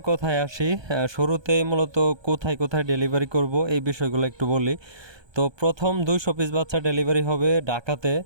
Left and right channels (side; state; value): left; late; 1.2 ms